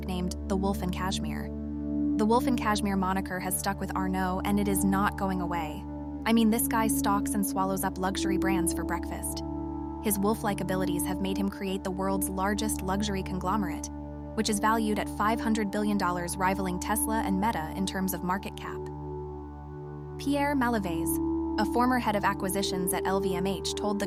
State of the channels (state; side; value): identical; both; correlation 1.00